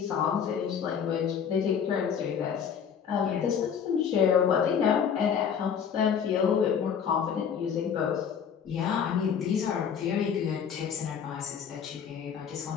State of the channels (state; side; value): quieter; right; 7.5 dB